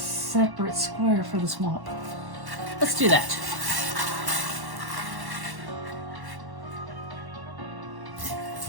square for the swamp. Let's do that.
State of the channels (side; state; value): left; late; 1.1 ms